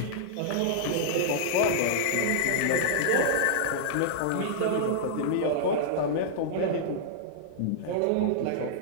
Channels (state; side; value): different; both; correlation -0.02